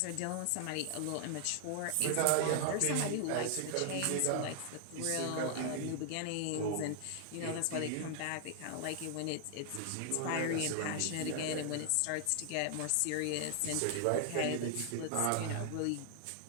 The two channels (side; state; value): both; different; correlation 0.00